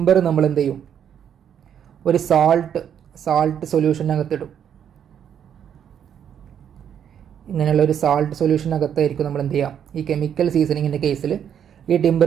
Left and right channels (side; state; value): left; quieter; 8.8 dB